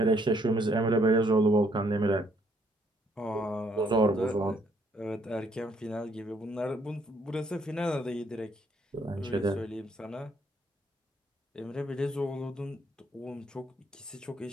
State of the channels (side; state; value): both; normal; correlation 0.68